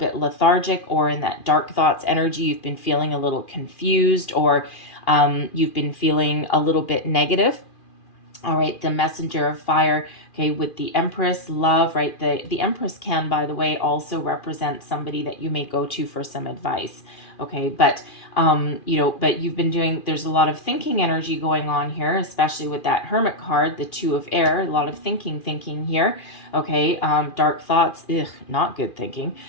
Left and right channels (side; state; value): right; late; 2.4 ms